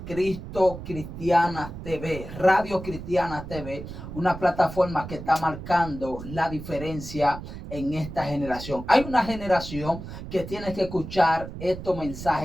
Cristo Cristiana TV, Radio Cristiana TV, una plataforma que está marcando la diferencia en esta generación. Hay una generación que tiene que escuchar estos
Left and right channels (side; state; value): right; noise; rumble, 11 dB below the sound